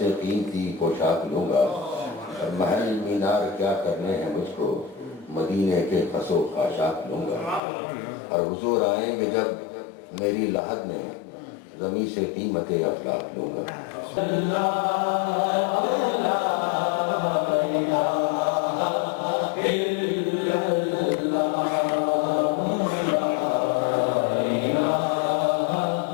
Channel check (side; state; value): right; drops out; at 7.6 s